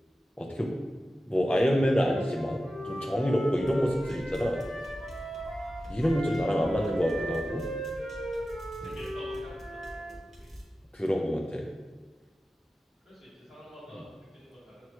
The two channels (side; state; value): both; normal; correlation 0.93